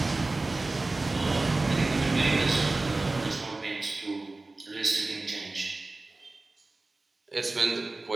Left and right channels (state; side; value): quieter; left; 3.2 dB